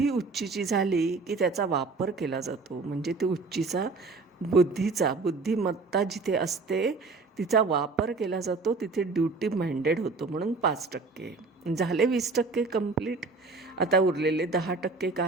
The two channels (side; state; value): left; quieter; 3.9 dB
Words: उच्चीची झाली की त्याचा वापर केला जातो. म्हणजे ते उच्चीचा बुद्धिमत्ता जिथे असते तिचा वापर केला जातो, तिथे ड्युटी माइंडेड होतो. म्हणून 5% झाले. 20% कंप्लीट. आता उरलेले 10%